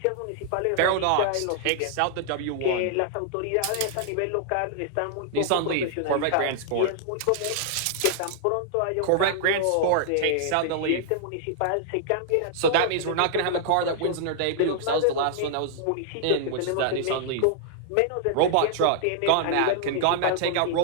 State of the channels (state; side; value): different; both; correlation -0.01